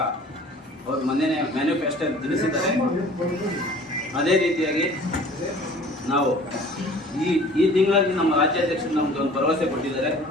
ಅವರು ಮೊನ್ನೆ ಮ್ಯಾನಿಫೆಸ್ಟೋ ತಿಳಿಸಿದ್ದಾರೆ. ಅದೇ ರೀತಿಯಾಗಿ ನಾವು ಈ ತಿಂಗಳಲ್ಲಿ ನಮ್ಮ ರಾಜ್ಯಾಧ್ಯಕ್ಷರು ನಮ್ಗೆ ಒಂದು ಭರವಸೆ ಕೊಟ್ಟಿದ್ದಾರೆ.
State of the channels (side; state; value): both; normal; correlation 0.48